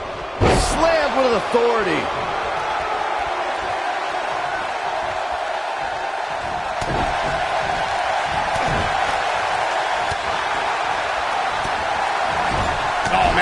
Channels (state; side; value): identical; both; correlation 1.00